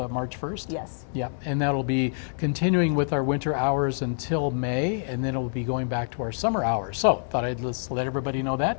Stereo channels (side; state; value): right; silent; digital silence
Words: March 1st? Yes. Yeah, and that'll be continuing with our winter hours until May, and then it'll be going back to our summer hours. So thought I'd just let everybody know